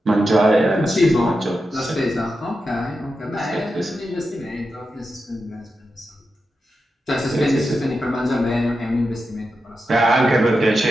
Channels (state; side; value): normal; both; correlation 0.89